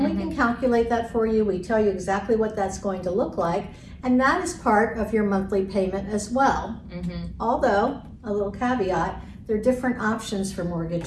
we can calculate that for you. We tell you exactly what that's going to look like. And that is part of your monthly payment as well. Although, a little caveat, there are different options for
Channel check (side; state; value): both; identical; correlation 1.00